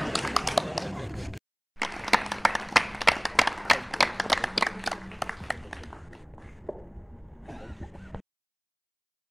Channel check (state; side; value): identical; both; correlation 1.00